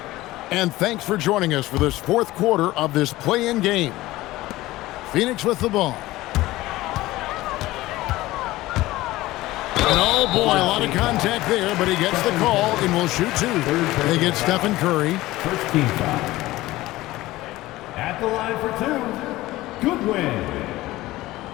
And thanks for joining us for this fourth quarter of this play-in game. Phoenix with the ball. And oh boy, a lot of contact there, but he gets the call and will shoot two. They get Stephen Curry. First team foul. At the line for two, Goodwin.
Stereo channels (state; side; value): quieter; right; 17.7 dB